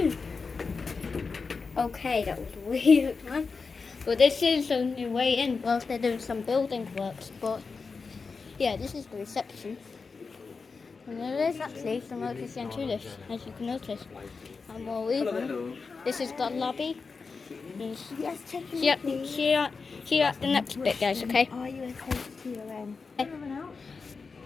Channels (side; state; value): right; quieter; 4.7 dB